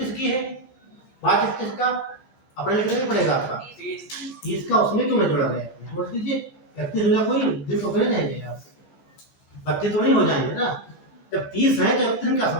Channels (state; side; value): late; right; 14 ms